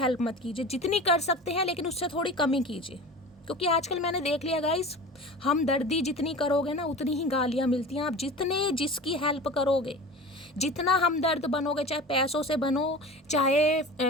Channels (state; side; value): normal; both; correlation 0.35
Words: मत कीजिए, जितनी कर सकते हैं, लेकिन उससे थोड़ी कमी कीजिए। क्योंकि आजकल मैंने देख लिया गाइस, हमदर्दी जितनी करोगे ना उतनी ही गालियाँ मिलती हैं। आप जितने जिसकी हेल्प करोगे, जितना हमदर्द बनोगे, चाहे पैसों से बनो, चाहे